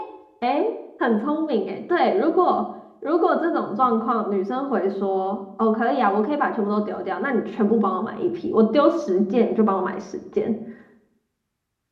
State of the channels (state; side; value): identical; both; correlation 1.00